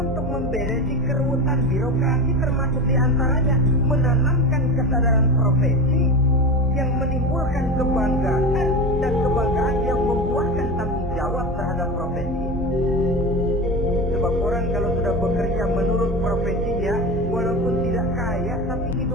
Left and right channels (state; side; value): normal; both; correlation 0.25